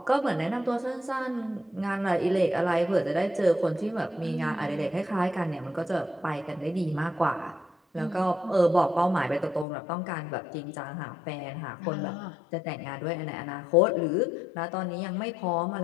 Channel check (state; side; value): drops out; right; at 9.7 s